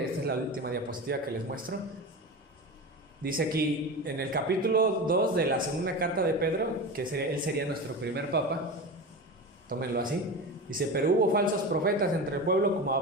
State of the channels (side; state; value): both; normal; correlation 0.26